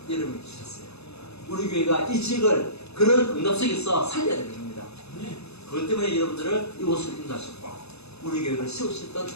여러분이 주셨어요. 우리 교회가 이 지역을 그런 응답 속에서 살려야 되는 겁니다. 그것 때문에 여러분들을 이곳을 인도하셨고 우리 교회를 세우셨던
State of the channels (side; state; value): right; late; 0.79 ms